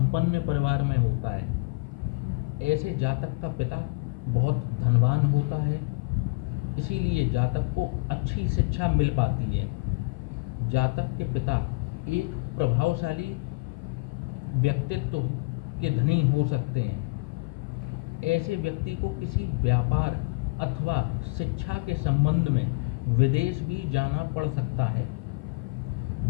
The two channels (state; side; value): quieter; right; 29.1 dB